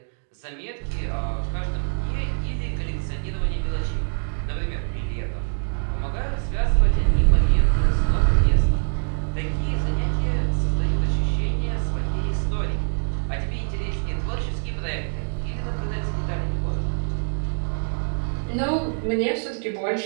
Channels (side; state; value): left; silent; 56 dB below the other